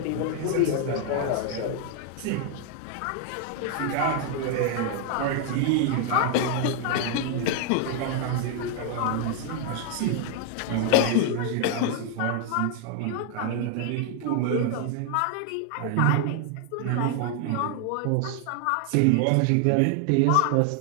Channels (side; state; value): both; different; correlation 0.00